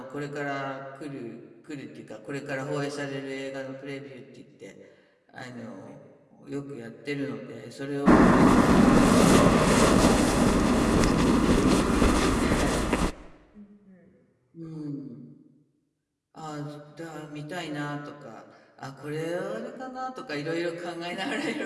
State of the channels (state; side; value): identical; both; correlation 1.00